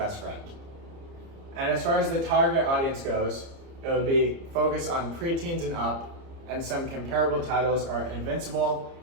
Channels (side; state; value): left; late; 30 ms